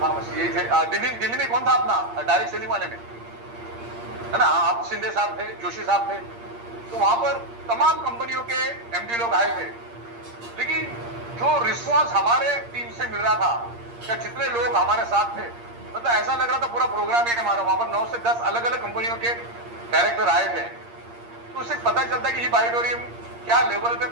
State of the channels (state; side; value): late; left; 8.6 ms